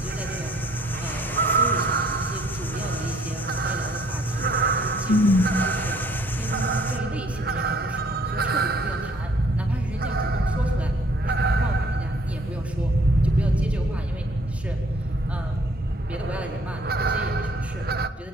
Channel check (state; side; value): normal; both; correlation 0.61